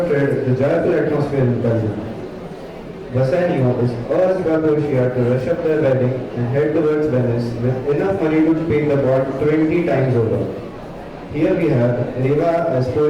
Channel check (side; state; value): both; identical; correlation 1.00